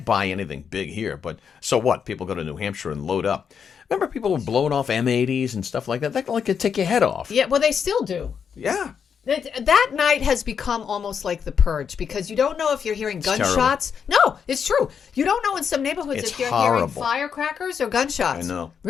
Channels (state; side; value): quieter; right; 7.0 dB